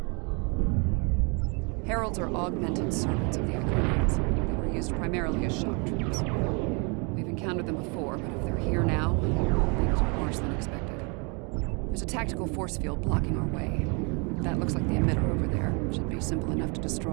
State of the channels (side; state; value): left; quieter; 32.9 dB